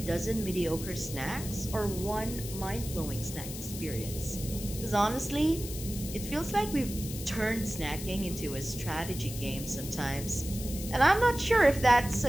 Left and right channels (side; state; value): left; noise; hiss, 10 dB below the sound